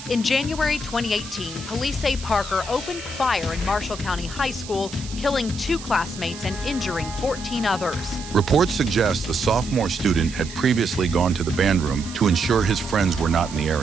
In January 2018, police say Parker opened fire in Marshall County High School, killing 2 classmates and injuring 14 others. Reports suggest the sophomore student had previously gone to the band room to ensure his friends were not in the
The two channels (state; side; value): noise; right; hiss, 14 dB below the sound